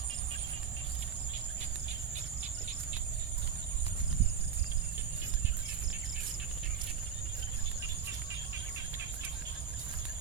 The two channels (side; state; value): left; quieter; 7.6 dB